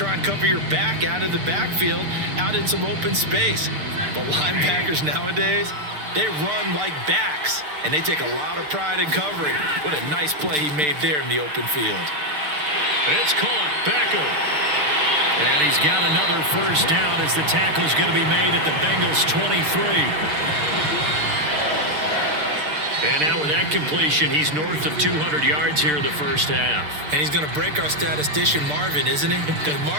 and cover your back out of the backfield, out in some open space. But linebackers nowadays, they run like backs, and they take a lot of pride in covering. What a nice play he made there in the open field. It's caught. Beckham. And he's got another 1st down as the tackle's going to be made at the Bengals 23. And now with that completion, he's north of 200 yards here in the 1st half. And he's going to break our statistician Marvin, isn't he? Because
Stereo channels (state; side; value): late; left; 6.7 ms